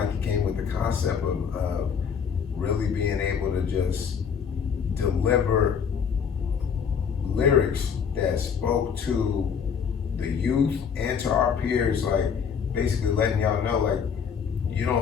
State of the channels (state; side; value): quieter; right; 6.9 dB